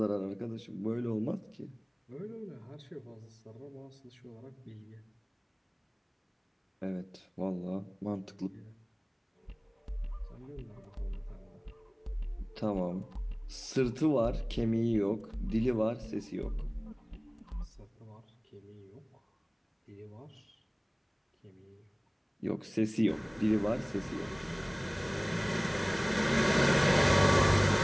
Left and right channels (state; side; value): identical; both; correlation 1.00